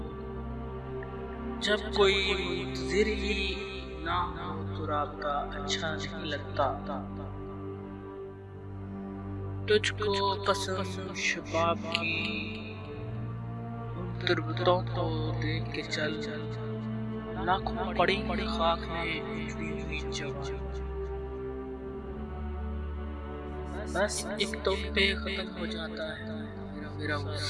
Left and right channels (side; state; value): both; identical; correlation 1.00